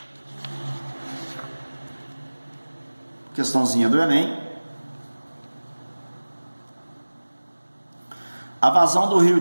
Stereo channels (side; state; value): both; inverted; correlation -1.00